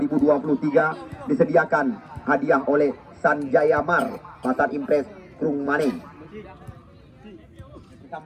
disediakan hadiah oleh Sanjaya Mar, Pasar Impres Krungmani.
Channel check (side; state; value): both; identical; correlation 1.00